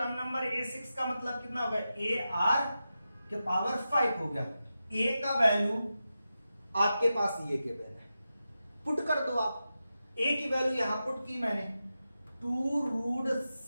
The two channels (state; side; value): inverted; both; correlation -0.91